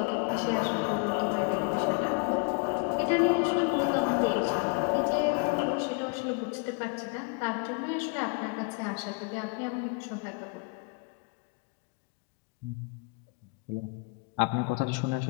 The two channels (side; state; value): right; quieter; 32.6 dB